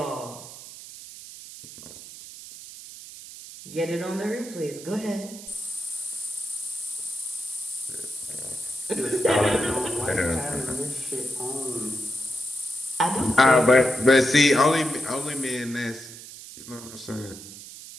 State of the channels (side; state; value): right; noise; hiss, 14 dB below the sound